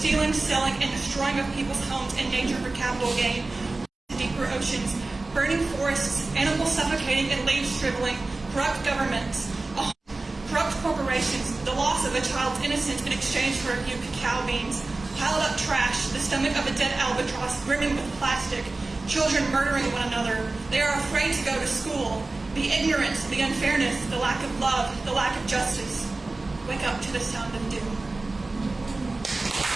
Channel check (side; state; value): left; quieter; 3.3 dB